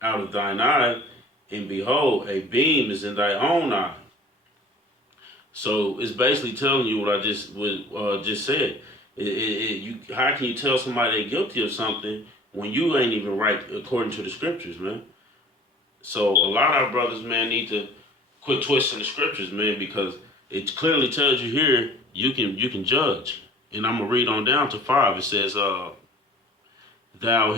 out of thine eye, and behold, a beam is in thy own eye. So it's basically telling you what I just said. How can you tell somebody they're guilty of something when you ain't even right according to the scriptures, man? So a lot of our brothers, man, need to quit twisting the scriptures, man, because it clearly tells you here you can judge. And I'm gonna read on down to 5. It says, thou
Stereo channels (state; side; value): normal; both; correlation 0.46